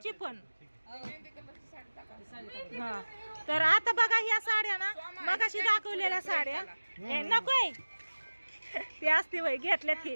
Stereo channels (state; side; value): inverted; both; correlation -1.00